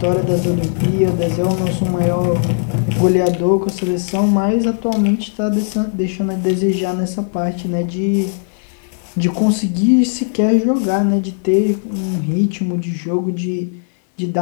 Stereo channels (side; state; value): right; silent; 64 dB below the other